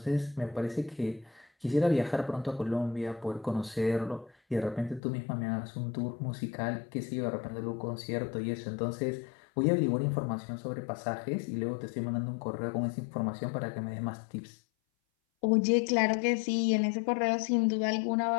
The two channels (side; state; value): right; drops out; at 5.0 s